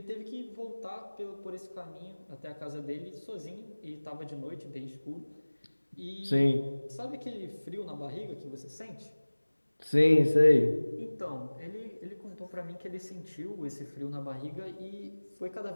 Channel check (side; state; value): both; inverted; correlation -1.00